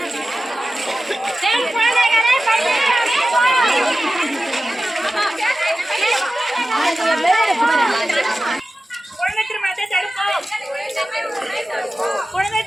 பெண் குழந்தைகளை குழந்தை திருமணத்தை தடுப்போம். குழந்தை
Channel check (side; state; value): both; normal; correlation 0.95